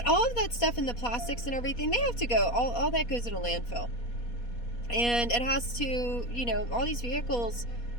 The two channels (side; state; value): right; late; 4.2 ms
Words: all of that stuff and the plastics and everything, they have to go. All that goes in a landfill. And it has to, you know, all these vehicles,